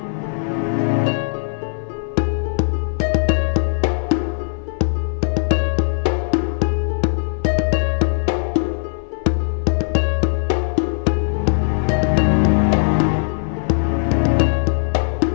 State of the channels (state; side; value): silent; right; 62 dB below the other